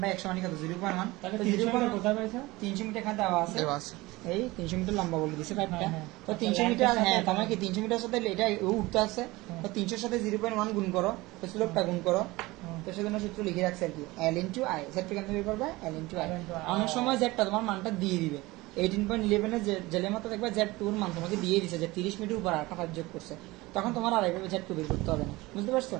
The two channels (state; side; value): quieter; left; 20.7 dB